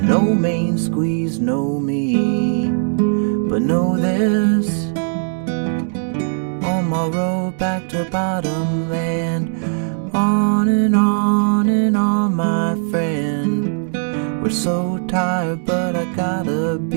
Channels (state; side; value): silent; left; 67 dB below the other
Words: main squeeze, no me. But know this, on my road back to bottom land, on and on, my friend. We're so tired, but I gotta